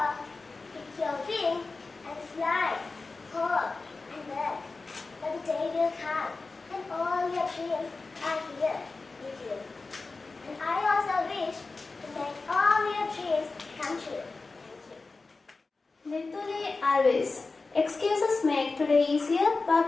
pick your wing and fly, hope and work. But the day will come and all your dreams are here with you. And I also wish to make all your dreams come true. Nituli always. Excuses make today easier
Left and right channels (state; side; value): quieter; right; 3.8 dB